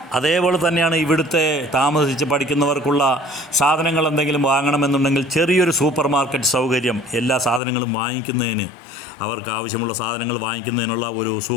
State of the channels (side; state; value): right; drops out; at 7.6 s